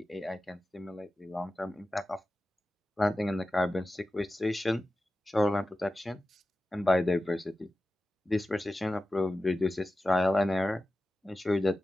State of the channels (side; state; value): both; normal; correlation 0.94